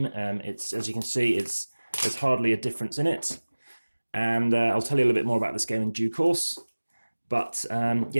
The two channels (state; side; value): inverted; both; correlation -1.00